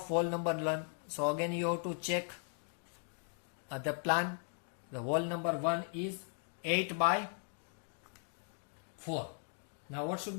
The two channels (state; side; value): silent; right; 52 dB below the other